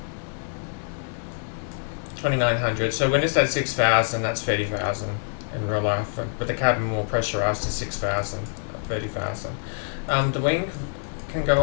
2900. So when it's at 6,000, that's 30,000 in real life. But the cabin more pressurized to 6,000, 30,000. The wing can go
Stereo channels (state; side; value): silent; right; digital silence